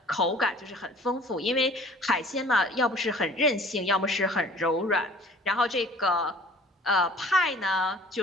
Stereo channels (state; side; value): normal; both; correlation 0.49